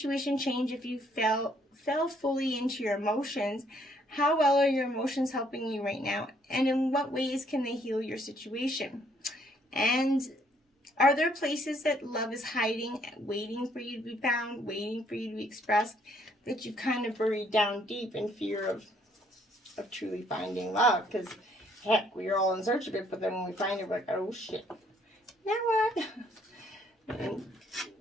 change if you fell fully into your emotions? How well are your emotions helping you right now? And in what ways can they heal your situation? And are there places that love is hiding, waiting for you to be found, waiting for you to be expressed, that you've kind of buried down deep in fear of truly finding love? Because, heck, we are all in search of it, but then when we find it, we're like, oh, shit. Now what? And,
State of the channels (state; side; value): normal; both; correlation 0.67